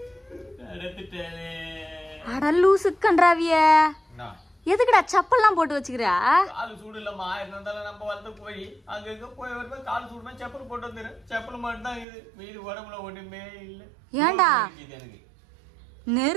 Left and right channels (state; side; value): drops out; left; at 12.1 s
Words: நடந்துட்டாலே. அட லூசு கன்றாவிய, எதுக்குடா செப்பல்லாம் போட்டு வச்சுக்கிறா? காலு சூடு இல்லம்மா. இருந்தாலும் நம்ம வளர்த்த கோழி அங்க போய் வருமா காலு சூடுமா செப்பல் போட்டு வந்துரு. செப்பல் மட்டும் தான் இது, மீது உடம்புல ஒண்ணுமே இல்ல. ஏண்டா